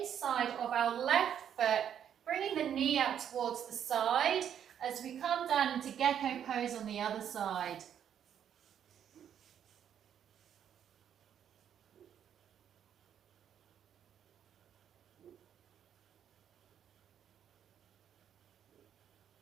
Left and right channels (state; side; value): quieter; left; 9.2 dB